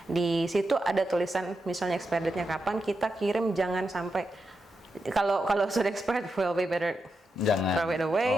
Di situ ada tulisan misalnya expired date-nya kapan, kita kirim jangan sampai kalau sudah expired, will be better jangan throw it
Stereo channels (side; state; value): both; normal; correlation 0.87